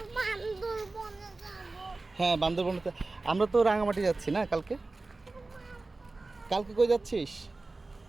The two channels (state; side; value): quieter; left; 3.3 dB